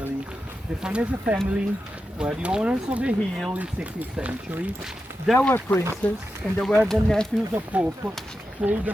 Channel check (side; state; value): both; normal; correlation 0.90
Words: The Farnese family were the owners of the hill in 16th century. They were princes, and they were the nephews of Pope Paul